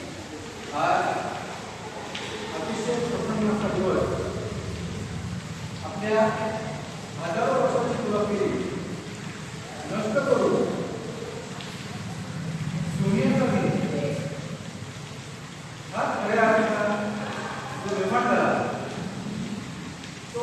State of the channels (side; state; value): both; identical; correlation 1.00